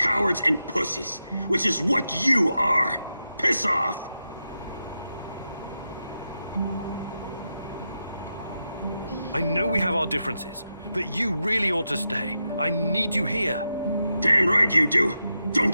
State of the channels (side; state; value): both; inverted; correlation -0.88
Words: and pussies, which is what you are. Piss off! I know we have our differences, but you really ought to stay. I need you here. Damn right you do.